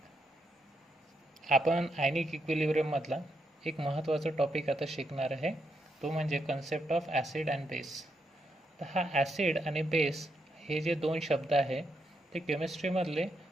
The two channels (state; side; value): normal; both; correlation 0.80